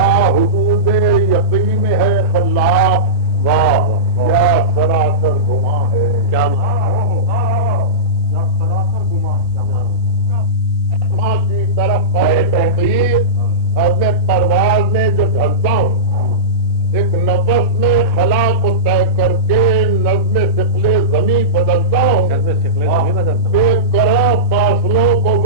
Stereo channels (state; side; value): normal; both; correlation -0.17